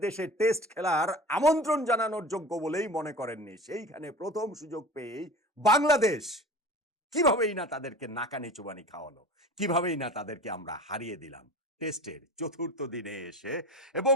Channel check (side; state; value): both; normal; correlation 0.36